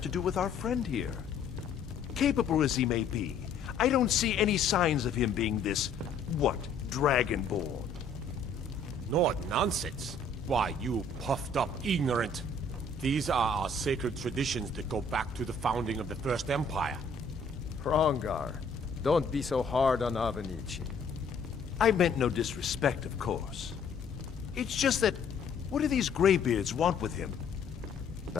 to do with our friend here? Capable as he may be, I don't see any signs of him being this, what, Dragonborn. Nord nonsense? Why, you puffed up ignorant. These are our sacred traditions that go back to the founding of the First Empire. Hrongar, don't be so hard on Avenici. I meant no disrespect, of course. It's just that, what do these Greybeards want with him?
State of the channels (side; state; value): right; quieter; 4.0 dB